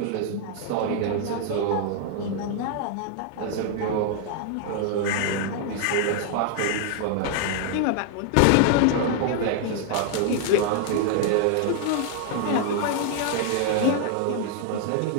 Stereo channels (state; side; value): different; both; correlation 0.00